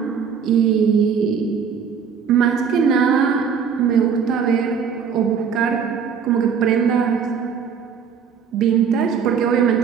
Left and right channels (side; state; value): left; quieter; 6.8 dB